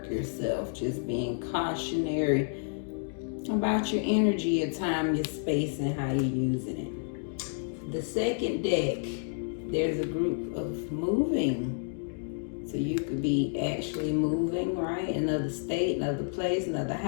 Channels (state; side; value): silent; right; digital silence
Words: yourself, just being cautionary about your energy, your time, your space, and how you're using it. The second deck, there's a group of moving. So you could be actually moving, right? Another state, another place, another